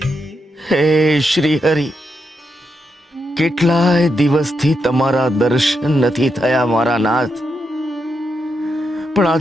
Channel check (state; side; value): normal; both; correlation 0.84